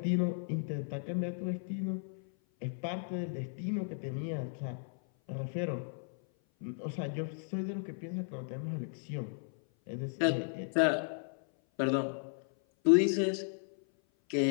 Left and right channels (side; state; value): right; silent; 55 dB below the other